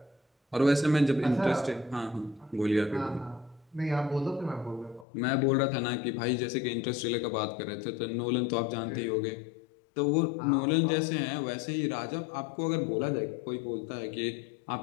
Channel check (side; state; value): right; drops out; at 5.1 s